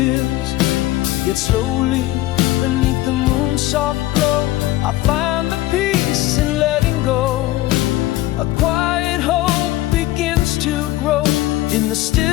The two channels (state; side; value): quieter; right; 16.7 dB